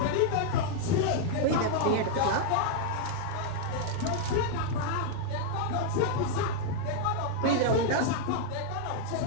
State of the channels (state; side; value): different; both; correlation 0.00